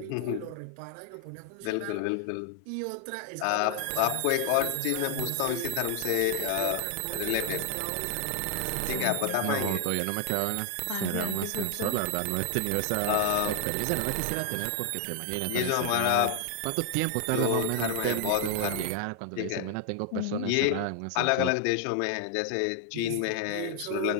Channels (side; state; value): both; different; correlation 0.00